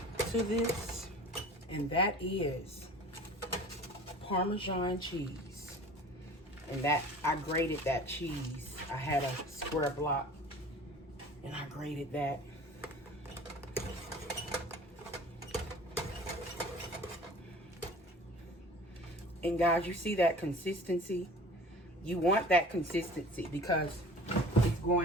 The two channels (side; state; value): both; normal; correlation 0.44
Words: to this, and that is Parmesan cheese. And that, I grated that cheese. I had a square block and I grated that. And guys, you see that consistency? You want that consistency because it's